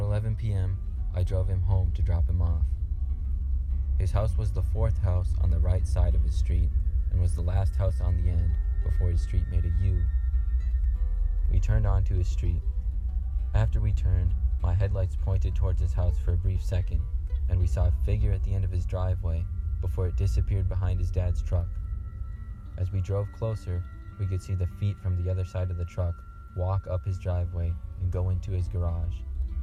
11 p.m., I drove him home to drop him off. His house was the fourth house on the right side of his street and was the last house on the end before his street made a U. We turned onto his street. After we turned, my headlights pointed towards his house for a brief second, and we saw a figure at the end of his driveway before it disappeared behind his dad's truck. As we drove closer, we could see the feet from the other side of the truck walk up his driveway and go into his garage.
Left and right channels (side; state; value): both; identical; correlation 1.00